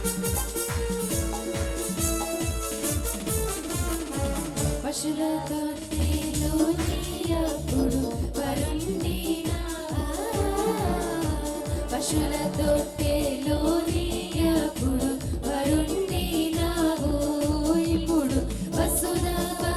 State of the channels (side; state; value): both; identical; correlation 1.00